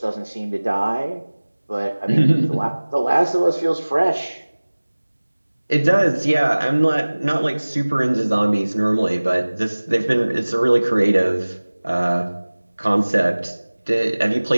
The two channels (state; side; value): inverted; both; correlation -1.00